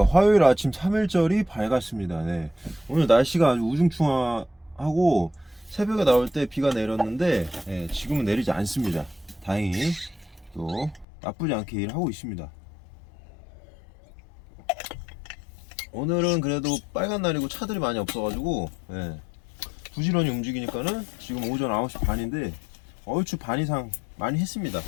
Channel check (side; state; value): right; drops out; at 11.1 s